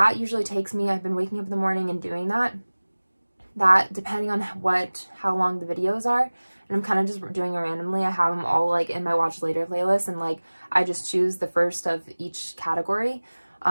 usually takes me, I've been waking up in the morning and doing that depending on how long the videos are, and I'm kind of just doing it randomly. I have them all like in my watch later playlist, and like I just choose the first of each category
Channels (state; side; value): inverted; both; correlation -1.00